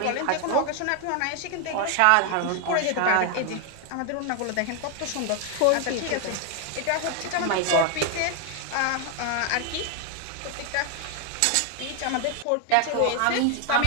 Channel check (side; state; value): both; different; correlation 0.01